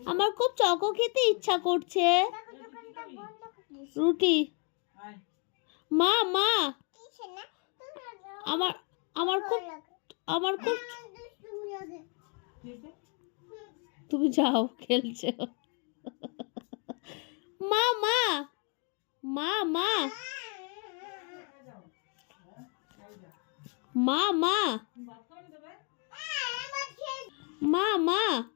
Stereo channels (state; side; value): quieter; right; 34.7 dB